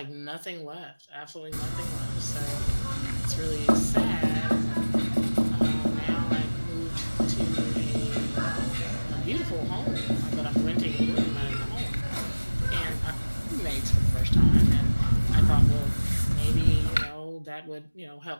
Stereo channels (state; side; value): inverted; both; correlation -1.00